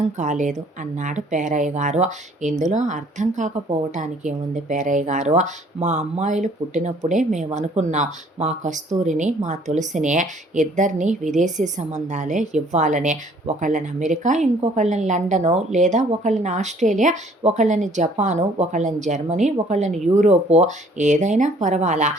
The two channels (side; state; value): both; normal; correlation 0.58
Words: కాలేదు అన్నాడు పేరయ్య గారు. ఇందులో అర్థం కాకపోవటానికి ఏముంది పేరయ్య గారు, మా అమ్మాయిలు పుట్టినప్పుడే మేము అనుకున్నాం మా కస్తూరిని మా తులసిని ఇద్దరిని విదేశీ సంబంధాలే ఇవ్వాలని. ఒకళ్ళని అమెరికా, ఇంకొకళ్ళని లండను, లేదా ఒకళ్ళని ఆస్ట్రేలియా, ఒకళ్ళని జపాను, ఒకళ్ళని జర్మనీ, ఒకళ్ళని యూరోపు, ఏదైనా పర్వాలా,